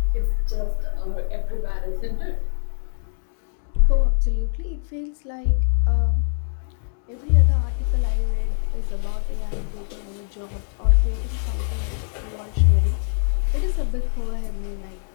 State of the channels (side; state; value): right; silent; 60 dB below the other